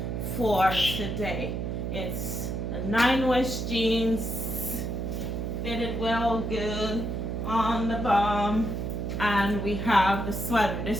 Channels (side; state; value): right; noise; hum, 3 dB below the sound